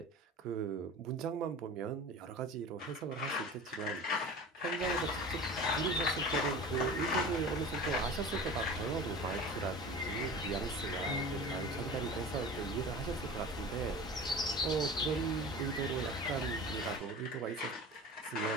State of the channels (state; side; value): normal; both; correlation 0.36